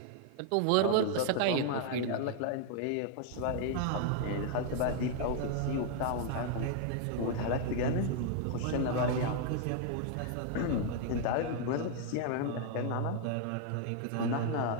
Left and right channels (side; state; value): both; different; correlation 0.00